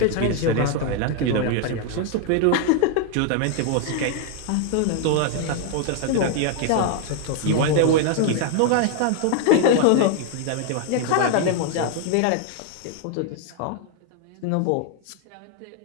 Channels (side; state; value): both; different; correlation 0.00